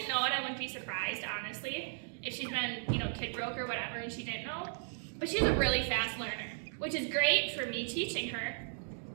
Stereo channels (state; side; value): silent; left; digital silence